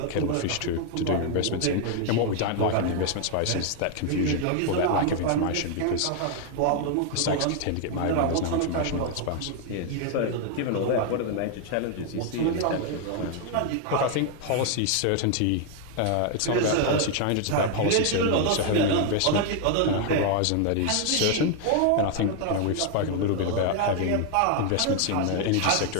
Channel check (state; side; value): different; both; correlation 0.00